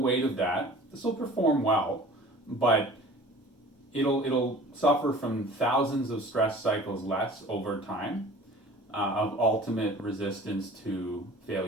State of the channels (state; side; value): normal; both; correlation 0.45